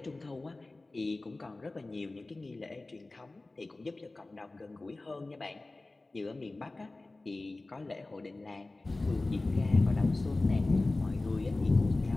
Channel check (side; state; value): right; quieter; 3.1 dB